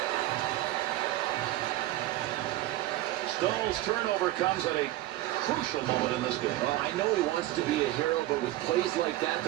Stahl's turnover comes at a crucial moment in this game. Well, I know he wants to be a hero, but with plays like that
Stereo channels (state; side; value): quieter; left; 16.0 dB